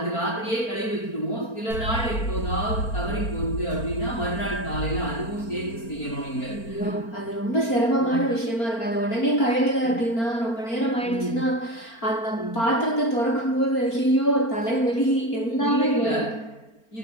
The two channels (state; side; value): late; right; 4.4 ms